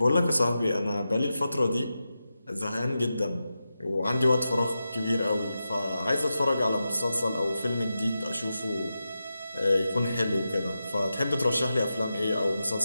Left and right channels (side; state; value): both; inverted; correlation -0.91